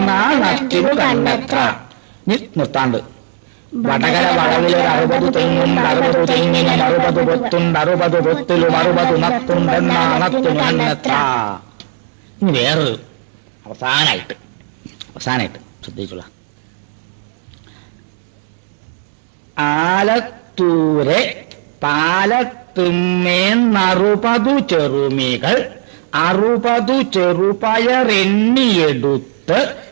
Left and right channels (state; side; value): silent; left; digital silence